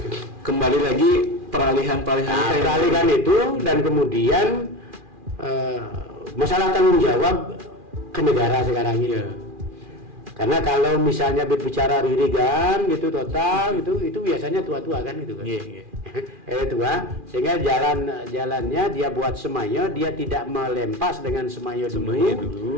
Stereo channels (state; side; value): late; left; 2.4 ms